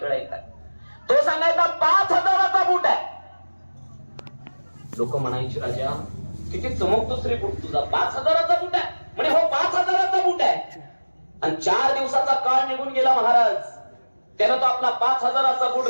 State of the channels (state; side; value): inverted; both; correlation -1.00